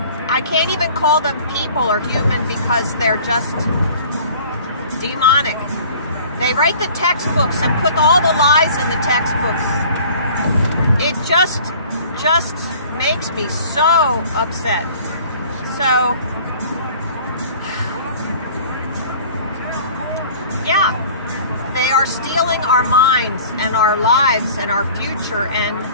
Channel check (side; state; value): both; inverted; correlation -0.47